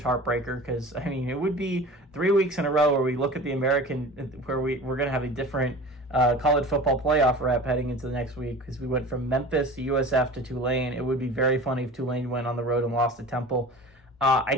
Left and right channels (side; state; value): both; normal; correlation 0.38